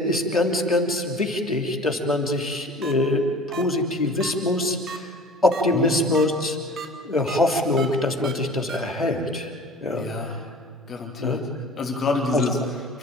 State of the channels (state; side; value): normal; both; correlation 0.43